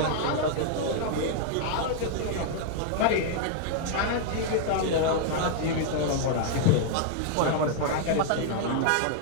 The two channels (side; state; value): both; different; correlation -0.01